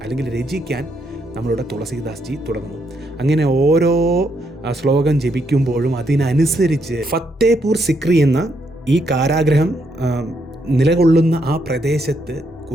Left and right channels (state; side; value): normal; both; correlation 0.76